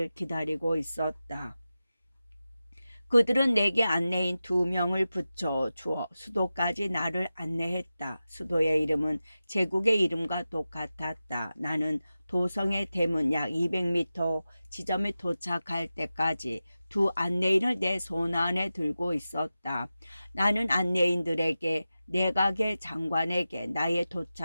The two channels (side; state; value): both; inverted; correlation -0.94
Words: 기다리고 있었다. 그들은 내게 안내인 2명을 붙여 주어 수도까지 나를 안내했다. 수도의 이름은 제국의 이름과 똑같았다. 나는 도성의 대문 약 200m 지점에 도착할 때까지 두 안내인을 내 손 안에 들고 있었다. 나는 안내인들에게 내각의 장관에게 나의